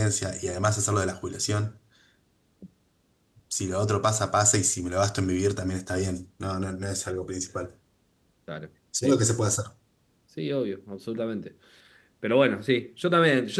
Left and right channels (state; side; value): identical; both; correlation 1.00